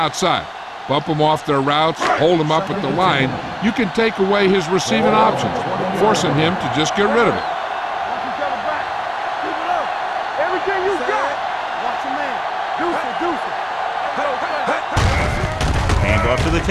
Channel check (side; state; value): both; identical; correlation 1.00